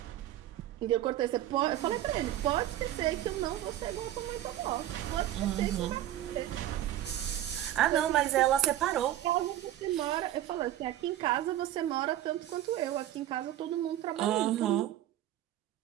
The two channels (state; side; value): quieter; left; 12.8 dB